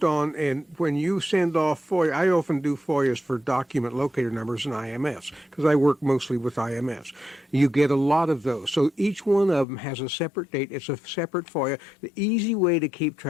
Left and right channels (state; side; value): drops out; right; at 9.7 s